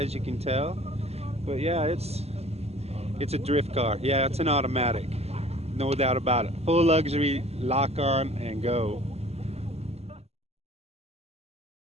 you can tell. But yeah, it's a drift car. Yeah, it's an automatic, no doubt about it. Full luxury, lock on and go.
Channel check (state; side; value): late; left; 0.30 ms